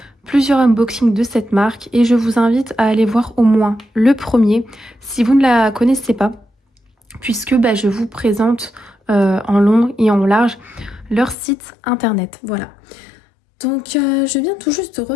plusieurs unboxings de cette marque et je vous invite à aller voir au moins le premier si vous ne la connaissez pas, puisque je vous présente en long et en large leur site internet. Voilà. Donc je viens tout juste de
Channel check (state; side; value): drops out; right; at 11.4 s